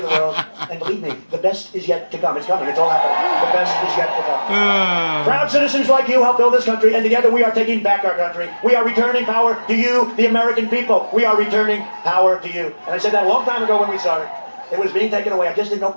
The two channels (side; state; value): both; inverted; correlation -1.00